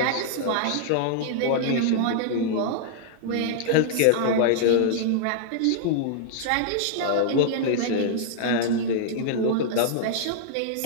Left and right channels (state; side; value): different; both; correlation -0.01